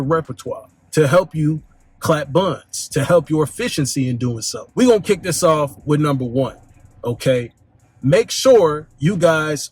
repertoire, to help you clap buns, to help your efficiency in doing so. We're gonna kick this off with number 1, okay? Make sure you guys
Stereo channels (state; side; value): identical; both; correlation 1.00